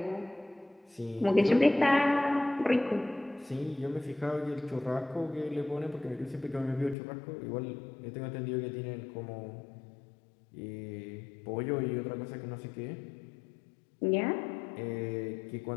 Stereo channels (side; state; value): right; drops out; at 7.0 s